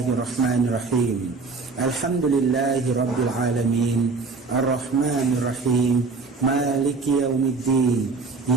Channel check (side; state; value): left; quieter; 4.2 dB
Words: Alhamdulillahi rabbil alamin. Arrahmanirrahim. Maliki yaumiddin.